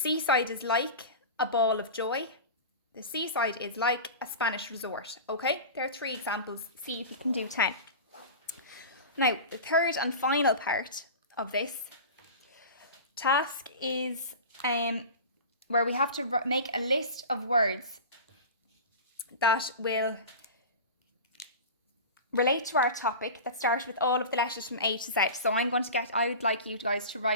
is like a ball of joy. The seaside is like a Spanish resort. Okay, there are 3 examples. See if you can do 10. Now, the third and final part of this task is where we have to make a list of words that will relate to our topic that start with all of the letters from A to Z. So I would like you guys to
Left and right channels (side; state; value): both; inverted; correlation -0.31